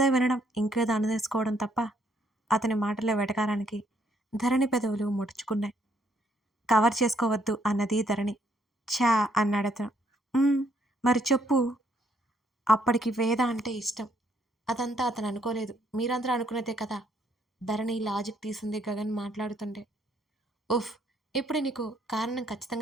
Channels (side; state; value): both; normal; correlation 0.70